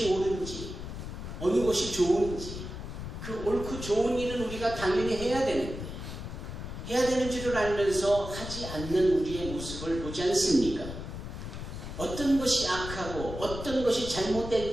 옳은지, 어느 것이 좋은지, 그 옳고 좋은 일은 우리가 당연히 해야 되는데, 해야 되는 줄을 알면서 하지 않는 우리의 모습을 보지 않습니까? 어떤 것이 악하고 어떤 것이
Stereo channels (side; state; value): left; noise; rumble, 8 dB below the sound